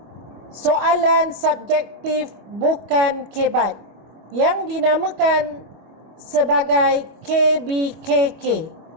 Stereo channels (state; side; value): late; left; 25 ms